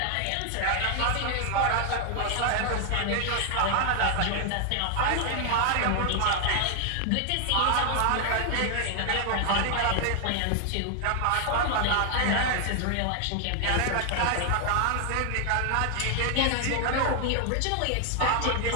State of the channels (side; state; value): both; different; correlation 0.00